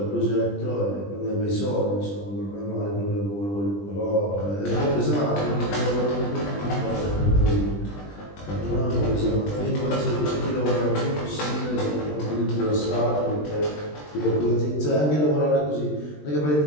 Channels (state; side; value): late; right; 20 ms